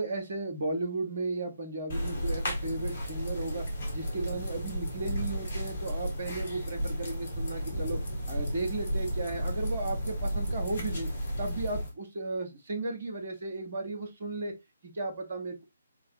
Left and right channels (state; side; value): inverted; both; correlation -0.81